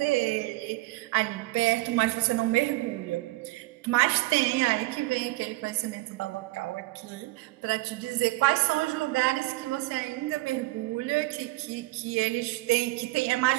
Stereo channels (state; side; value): quieter; left; 20.3 dB